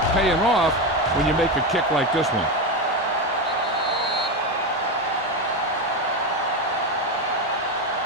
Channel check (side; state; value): both; normal; correlation 0.14